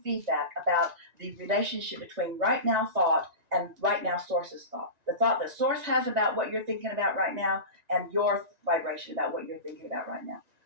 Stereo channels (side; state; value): left; late; 1.9 ms